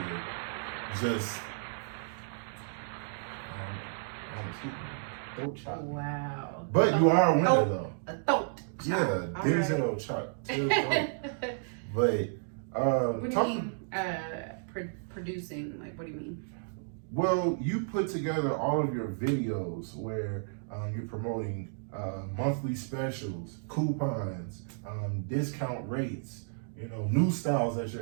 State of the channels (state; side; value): silent; left; digital silence